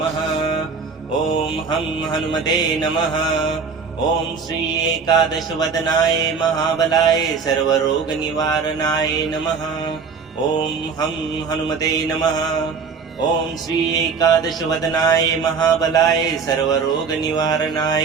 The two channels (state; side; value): quieter; left; 5.4 dB